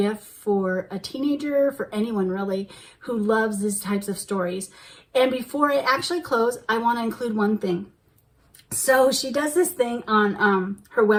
for a teenager, for anyone really, who loves these types of stories. And before I actually close, I want to include one thing. So she does this thing on her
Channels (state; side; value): identical; both; correlation 1.00